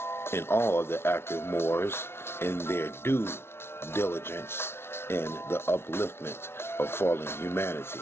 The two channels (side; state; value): right; late; 0.12 ms